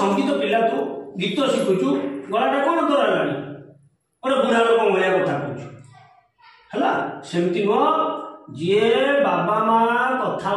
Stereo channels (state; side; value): identical; both; correlation 1.00